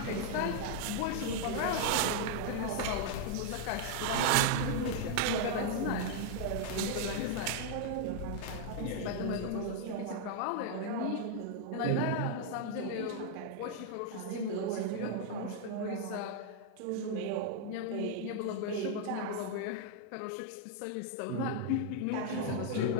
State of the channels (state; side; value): different; both; correlation 0.00